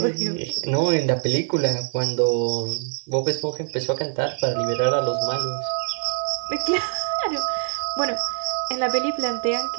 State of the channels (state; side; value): silent; left; digital silence